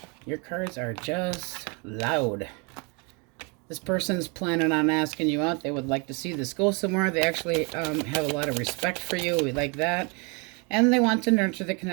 Your cards are just loud. This person's planning on asking you out. They would like to see this go somewhere. They actually have a lot of respect for you. We like that. And they want to nurture the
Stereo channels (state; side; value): quieter; left; 32.3 dB